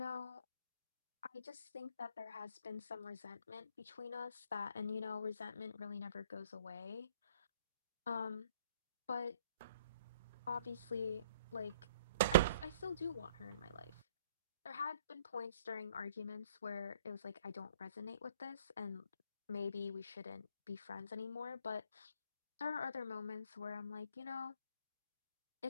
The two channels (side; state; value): both; inverted; correlation -0.59